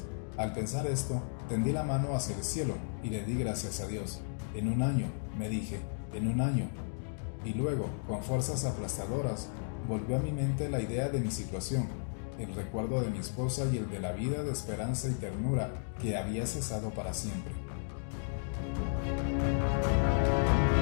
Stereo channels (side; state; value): right; silent; digital silence